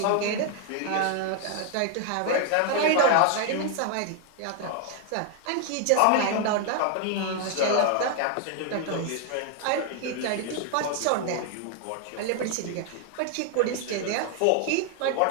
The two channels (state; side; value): different; both; correlation 0.00